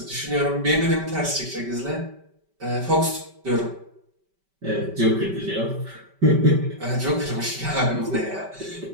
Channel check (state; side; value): late; left; 5.2 ms